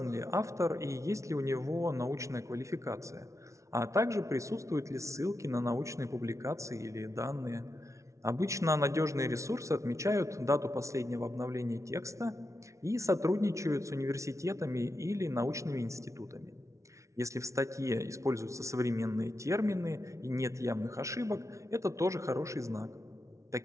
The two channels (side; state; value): left; late; 0.14 ms